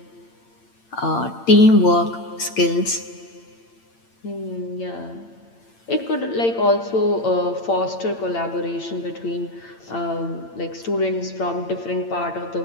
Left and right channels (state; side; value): late; right; 8.8 ms